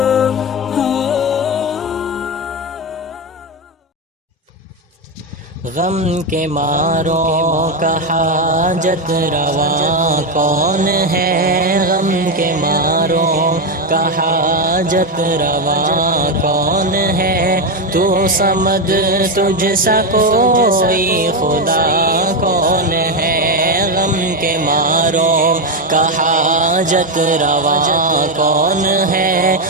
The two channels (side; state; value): both; normal; correlation 0.09